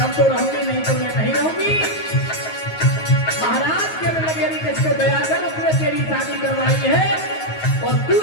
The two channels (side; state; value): right; late; 9.4 ms